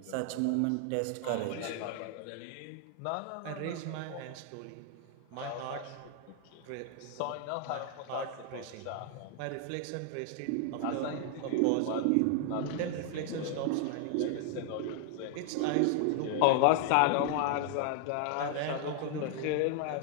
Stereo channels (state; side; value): different; both; correlation 0.00